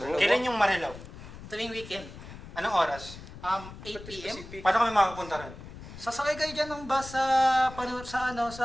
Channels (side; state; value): left; noise; rumble, 14 dB below the sound